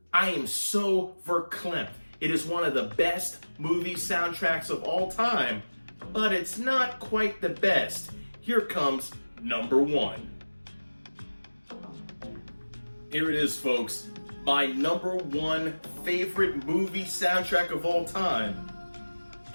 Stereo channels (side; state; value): both; inverted; correlation -1.00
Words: I am so verklempt. It is one of the best movie soundtracks of all time, but it's not quite the best. Here comes number 1. Here it is, folks. My number 1 favorite movie soundtrack of all time